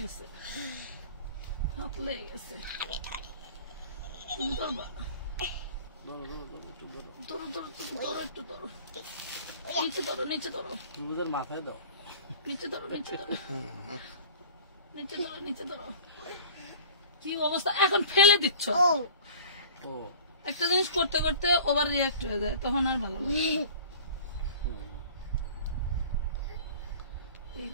হাত লেগে গেছে। তুমি ধরবা? ধরো ধরো ধরো, একটু ধরো, নিচে ধরো, নিচে ধরো, মাথায় দাও, নিচে ধরো, নিচে ধরো, নিচে ধরো, নিচে ধরো। কি অবস্থা, এখন ফেলে দিচ্ছ। একটা জিনিস করতে করতে ওভার রিয়াক্ট হয়ে যায়, তখন আর ভালো লাগে। এই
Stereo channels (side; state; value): both; inverted; correlation -0.43